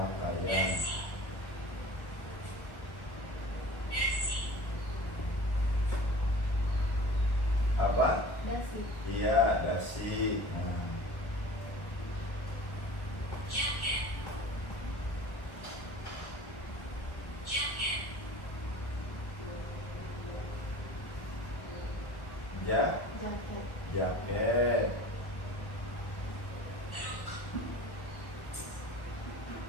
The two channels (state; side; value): late; right; 1.3 ms